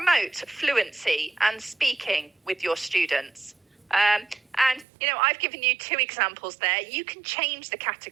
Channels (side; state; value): left; drops out; at 4.9 s